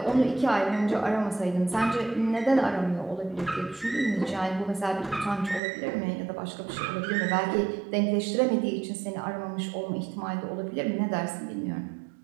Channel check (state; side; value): drops out; left; at 5.6 s